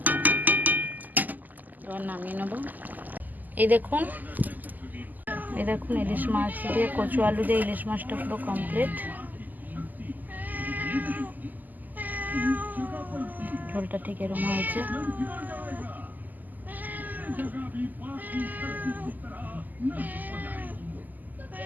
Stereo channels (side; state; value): left; late; 0.084 ms